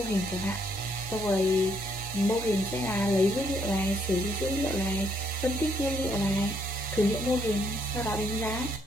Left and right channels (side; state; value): both; normal; correlation 0.71